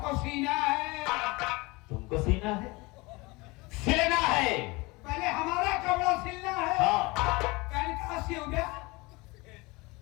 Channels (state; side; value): quieter; right; 24.0 dB